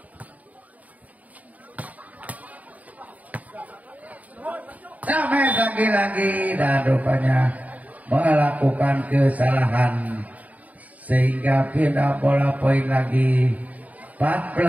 Sampai lagi-lagi dan rupanya melakukan kesalahan sehingga pindah bola poin lagi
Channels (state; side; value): late; left; 0.073 ms